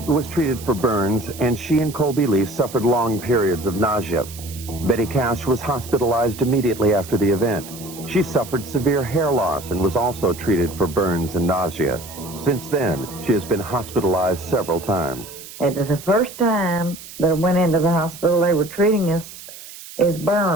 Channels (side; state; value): right; noise; hiss, 15 dB below the sound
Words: was treated for burns, and she and Colby Lee suffered long periods of nausea. Betty Cash was hospitalized immediately after the event. She suffered severe hair loss and was also treated for burns and nausea. Since then, she has been hospitalized several times. It was the first time that I went into the hospital, they were treating us as